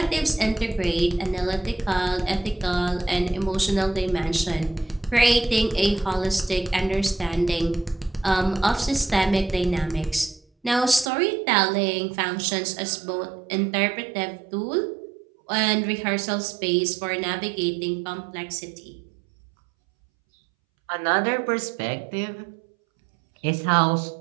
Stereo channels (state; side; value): drops out; left; at 11.1 s